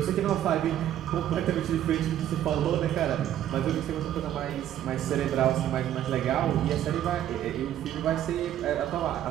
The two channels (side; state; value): left; quieter; 11.6 dB